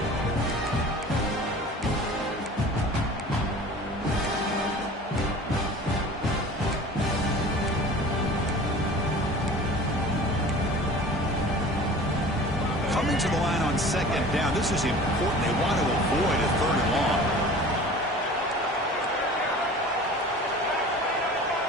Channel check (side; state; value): both; normal; correlation 0.42